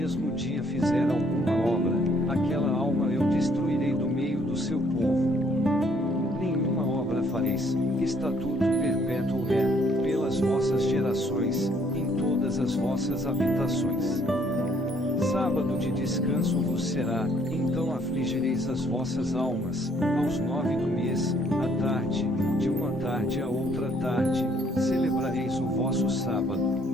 dia fizer alguma obra, aquela alma eu destruirei do meio do seu povo. Nenhuma obra fareis, estatuto perpétuo é, pelas vossas gerações, em todas as vossas habitações. Sábado de descanso vos será, então afligireis as vossas almas, aos 9 do mês, à tarde, de uma tarde a outra tarde, celebrareis o vosso sábado.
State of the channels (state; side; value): normal; both; correlation 0.65